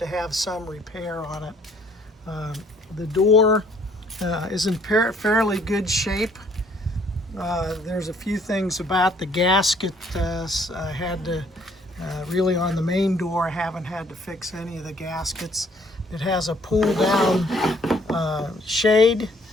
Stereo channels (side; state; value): both; normal; correlation 0.62